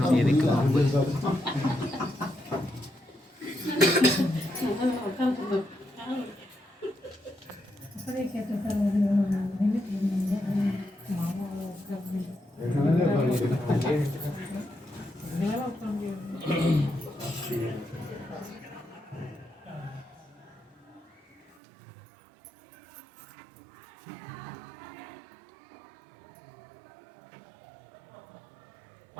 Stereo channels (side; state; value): left; drops out; at 21.6 s